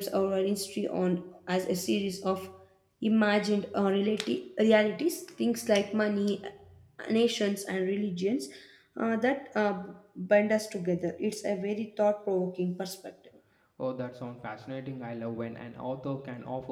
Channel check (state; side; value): identical; both; correlation 1.00